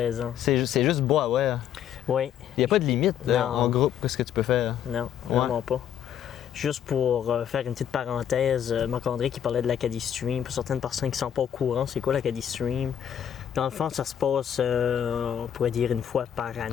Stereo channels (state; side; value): quieter; right; 9.5 dB